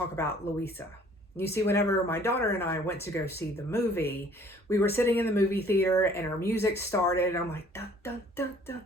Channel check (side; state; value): both; normal; correlation 0.56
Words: about Louisa. You see, whenever my daughter and I went to go see the movie, we were sitting in the movie theater and our music started. And I'm like, dun, dun, dun, dun,